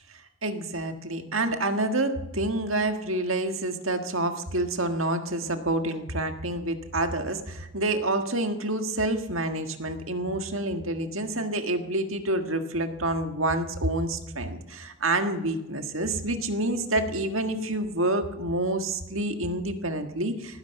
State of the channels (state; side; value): normal; both; correlation 0.03